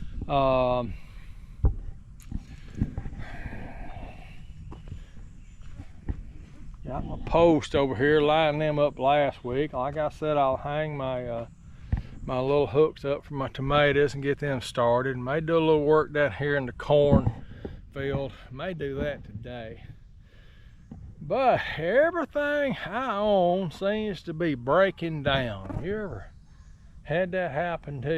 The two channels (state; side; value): identical; both; correlation 1.00